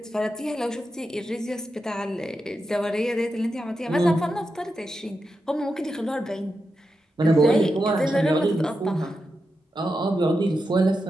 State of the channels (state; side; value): normal; both; correlation 0.88